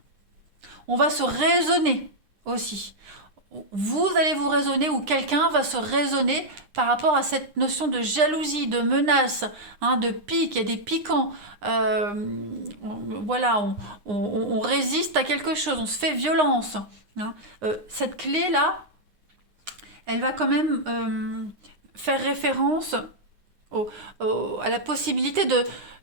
On va se raisonner aussi. Vous allez vous raisonner ou quelqu'un va se raisonner par rapport à cette notion de jalousie, de menace, hein, de pique, il y a des piquants. Voilà, on résiste à quelque chose, on se fait violence. Hein. Cette clé-là, elle va quand même faire référence à la possibilité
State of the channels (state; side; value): late; left; 9.8 ms